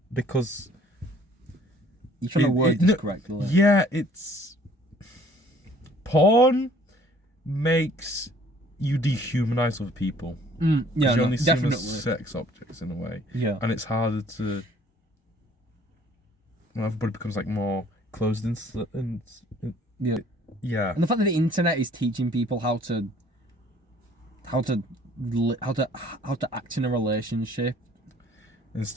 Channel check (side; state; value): both; normal; correlation 0.56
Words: Because You're trying to word this correctly. Yeah, it's porn makes you dehumanize other people. Yeah, you only see them definitely. as sex objects in a way. Yeah. And it's harder to. Well, everybody becomes like more closed and Yeah. yeah. And the fact that the internet is teaching people how to act in a relationship.